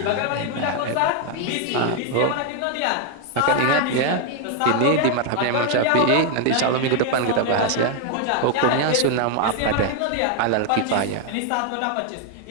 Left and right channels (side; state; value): both; different; correlation 0.00